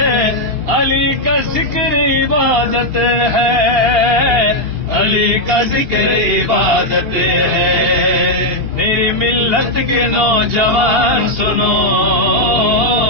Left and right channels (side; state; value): left; late; 2.8 ms